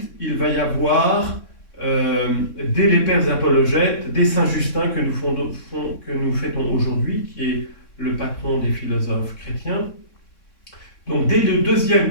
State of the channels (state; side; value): late; right; 3.6 ms